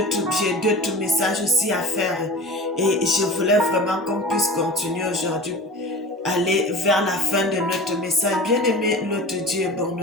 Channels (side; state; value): both; normal; correlation 0.36